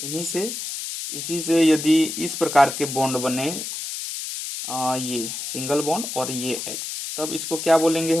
इसी से यदि इस प्रकार के बॉन्ड बने, ये सिंगल बॉन्ड और ये H, तब इसको क्या बोलेंगे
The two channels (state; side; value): noise; left; hiss, 6 dB below the sound